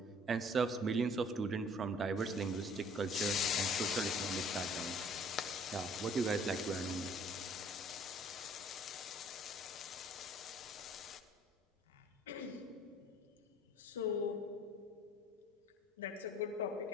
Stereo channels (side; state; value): both; normal; correlation 0.55